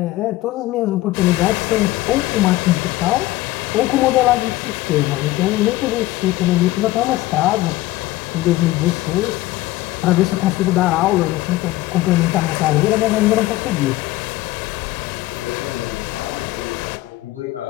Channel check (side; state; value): right; quieter; 17.4 dB